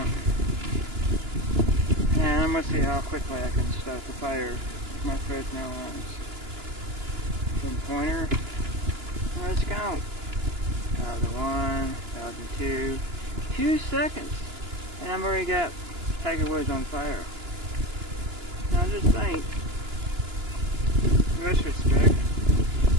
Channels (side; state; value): left; late; 2.9 ms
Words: And I'm going to see how quickly I can start the fire with my Fresnel lens. Then pointer. Let's go. 1001, 1002. 2 seconds. And I've already got Tiger Woods on fire. Now just think, in retrospect,